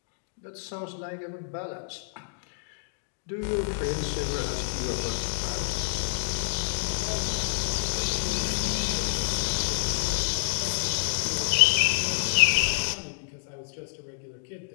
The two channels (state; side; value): silent; right; digital silence